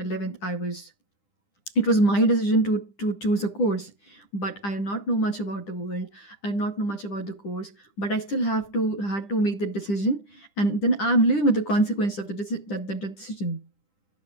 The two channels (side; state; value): right; late; 10 ms